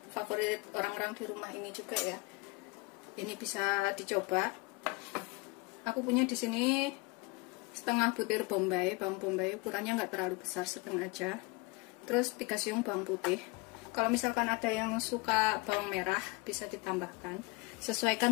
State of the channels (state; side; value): quieter; right; 26.6 dB